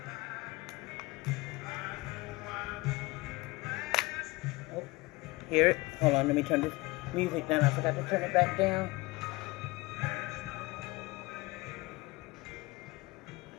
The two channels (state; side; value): quieter; right; 22.6 dB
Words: Oh, hear it? Hold on, let me turn this music down. I forgot to turn it back down.